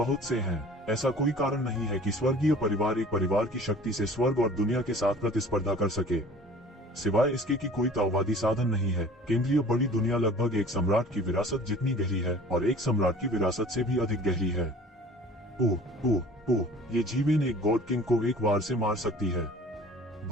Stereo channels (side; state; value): both; normal; correlation 0.46